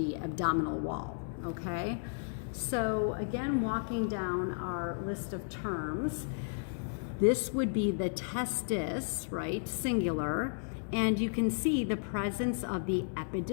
abdominal wall, okay? So again, walking down our list of terms, this would be the testis, right, singular, and you can see the presence of the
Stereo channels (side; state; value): right; silent; digital silence